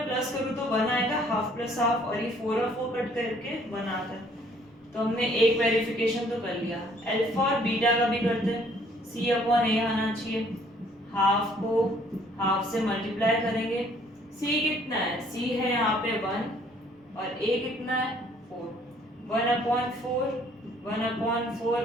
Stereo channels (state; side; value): normal; both; correlation 0.61